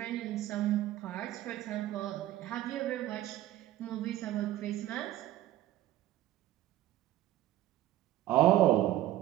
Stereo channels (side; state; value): left; quieter; 14.2 dB